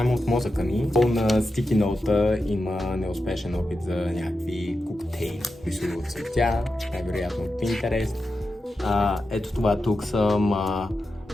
от мозъка ми. На стики ноута има неуспешен опит за някакви коктейли. Рисува от цветя, най-вероятно от Pinterest. Ето това тук съм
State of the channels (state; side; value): normal; both; correlation 0.89